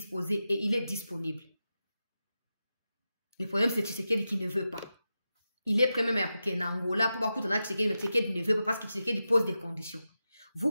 et il est disponible. Le problème, c'est Tshisekedi qui ne veut pas. Il est prêt même à couper en Angola pour voir Tshisekedi, mais Tshisekedi ne veut pas parce que Tshisekedi pose des conditions. Vous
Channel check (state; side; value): inverted; both; correlation -0.91